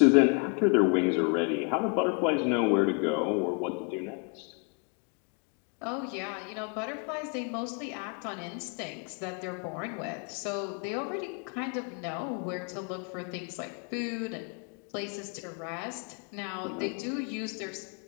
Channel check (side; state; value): right; quieter; 35.9 dB